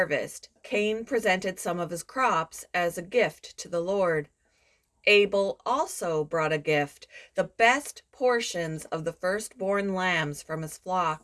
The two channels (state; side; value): identical; both; correlation 1.00